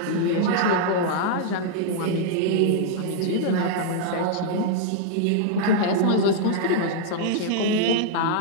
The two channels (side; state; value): both; different; correlation -0.01